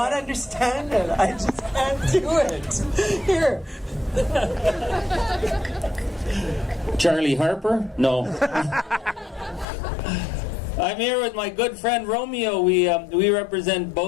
understand it. I just can't do it. Here. Charlie Harper? No. I'm here with my good friend Romeo. We represent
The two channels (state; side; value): drops out; right; at 9.7 s